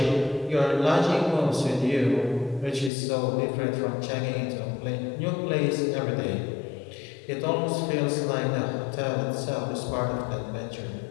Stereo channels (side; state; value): right; drops out; at 2.9 s